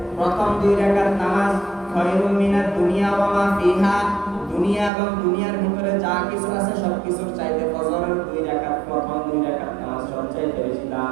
প্রথম 2 রাকাত নামাজ খায়রুম মিনাদ দুনিয়া ওয়া মা ফিহা, দুনিয়া এবং দুনিয়ার ভিতরে যা কিছু আছে সবকিছুর চাইতে ফজরের 2 রাকাত, প্রথম 2 রাকাত নামাজ সবচেয়ে বেশি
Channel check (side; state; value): left; drops out; at 4.9 s